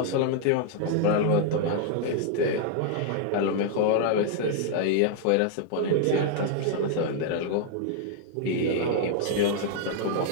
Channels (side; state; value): both; different; correlation 0.00